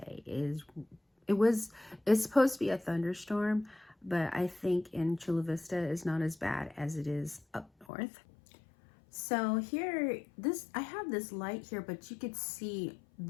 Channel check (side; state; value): right; drops out; at 7.9 s